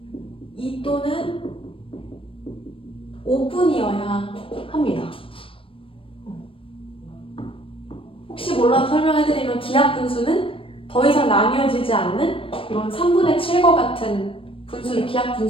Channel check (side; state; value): right; late; 0.26 ms